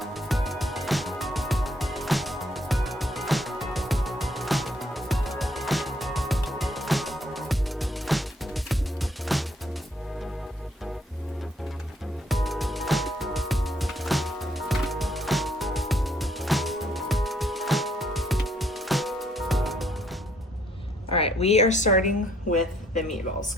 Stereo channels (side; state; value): both; normal; correlation 0.68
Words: All right, we are starting with the meatballs